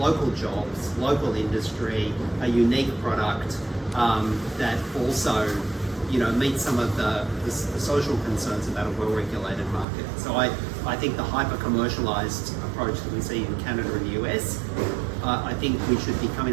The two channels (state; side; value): drops out; left; at 9.9 s